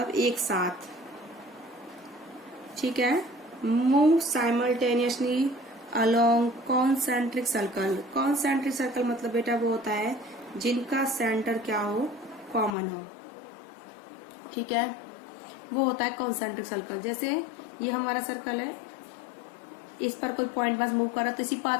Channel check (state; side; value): drops out; right; at 12.8 s